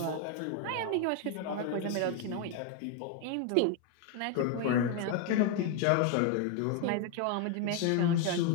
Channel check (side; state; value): both; different; correlation 0.01